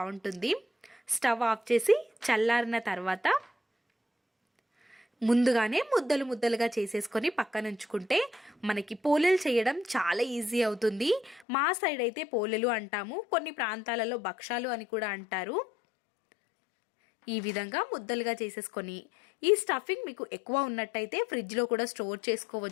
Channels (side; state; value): right; drops out; at 11.5 s